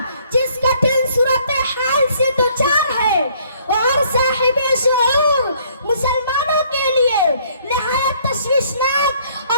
जिस कठिन सूरत हाल से दुचार है और साहिबे शऊर मुसलमानों के लिए निहायत तशवीशनाक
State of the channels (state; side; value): inverted; both; correlation -0.62